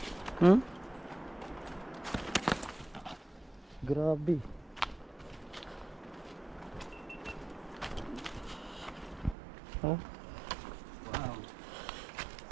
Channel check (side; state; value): left; drops out; at 9.3 s